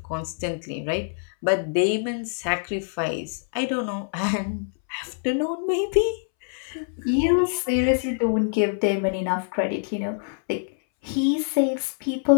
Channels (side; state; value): right; silent; 62 dB below the other